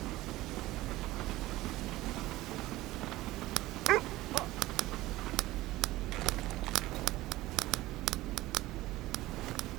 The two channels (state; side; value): quieter; left; 17.5 dB